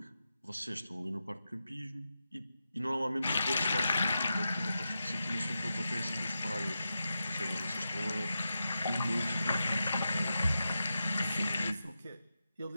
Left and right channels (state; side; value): inverted; both; correlation -0.90